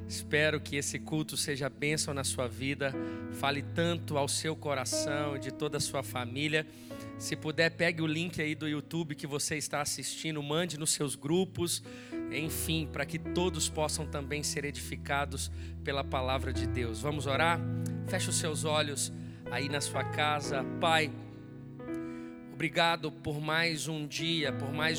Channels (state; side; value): identical; both; correlation 1.00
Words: Espero que esse culto seja bênção na sua vida, fale tanto ao seu coração e de toda a sua família. Se puder, pegue o link aí do YouTube que você está assistindo, mande nos seus grupos, enfim, para que todos possam também ser edificados pela palavra de Deus. Vamos orar? Feche os seus olhos aí na sua casa. Pai, obrigado por mais um dia, por